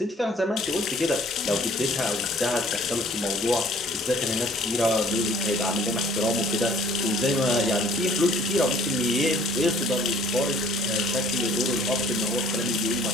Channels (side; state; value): both; normal; correlation 0.55